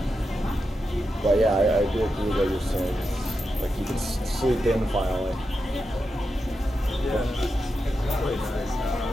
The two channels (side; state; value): both; normal; correlation 0.88